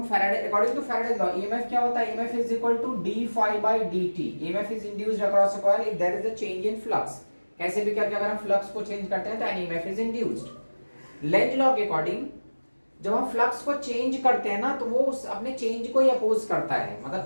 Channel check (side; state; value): both; inverted; correlation -1.00